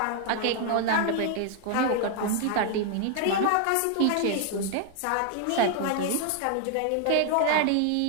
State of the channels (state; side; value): different; both; correlation 0.00